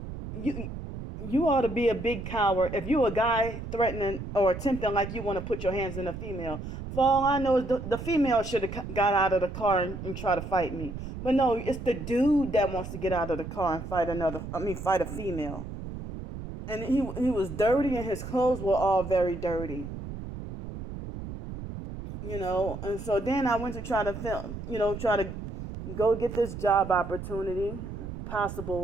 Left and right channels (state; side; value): noise; right; rumble, 9 dB below the sound